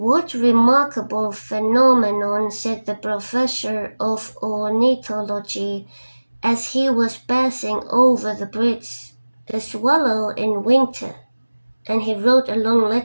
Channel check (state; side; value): inverted; both; correlation -1.00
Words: remarkable phenomenon," said the professor of ornithology as he was passing over the bridge. "The swallow in winter," and he wrote a long